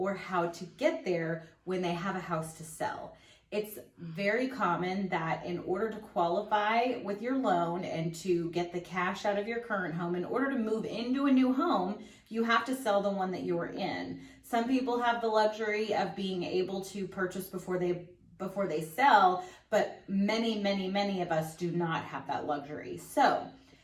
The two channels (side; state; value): both; identical; correlation 1.00